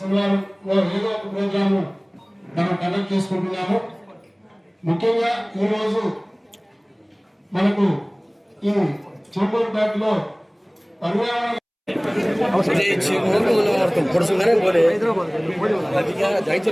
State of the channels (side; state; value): both; identical; correlation 1.00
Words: ఏదో ఒక ప్రోగ్రాము మనం కండక్ట్ చేసుకుంటున్నాము. ముఖ్యంగా ఈరోజు మనకు ఈ చెవుకూరుపేటలో పర్యావరణ